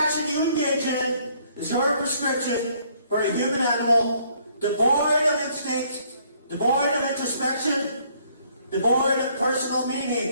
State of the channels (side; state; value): both; inverted; correlation -0.64